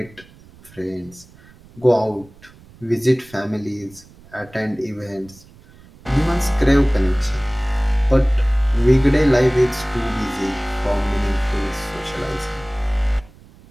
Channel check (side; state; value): right; noise; rumble, 24 dB below the sound